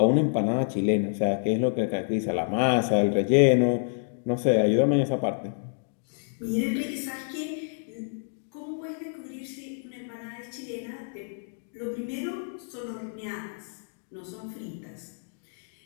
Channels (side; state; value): right; silent; digital silence